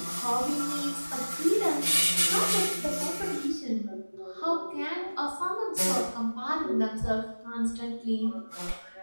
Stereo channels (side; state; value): both; inverted; correlation -1.00